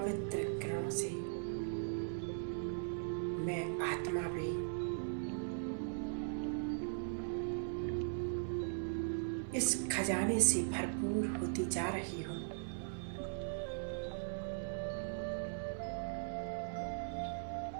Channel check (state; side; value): silent; left; 51 dB below the other